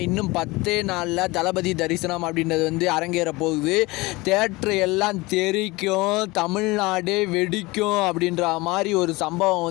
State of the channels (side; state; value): right; quieter; 22.4 dB